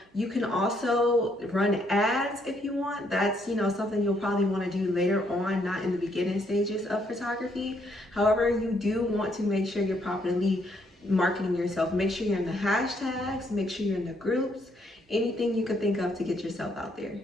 You can also run ads if you want. That's, something you'll probably want to do later on, not in the beginning stages of photography. However, you do want to make sure you're properly marketing yourself. Make sure you're in the hashtags, make sure you're in the groups, anything you can think of to get yourself out there.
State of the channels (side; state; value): both; normal; correlation 0.71